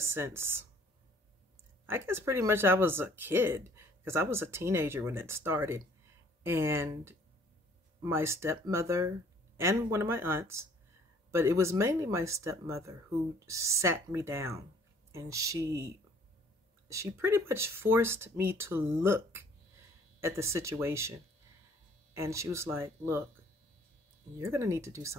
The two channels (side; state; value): both; normal; correlation 0.57